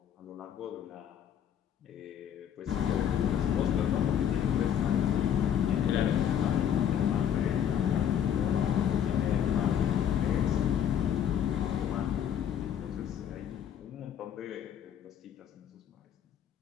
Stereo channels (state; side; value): quieter; right; 9.2 dB